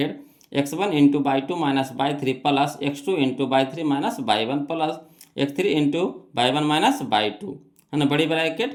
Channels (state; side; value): identical; both; correlation 1.00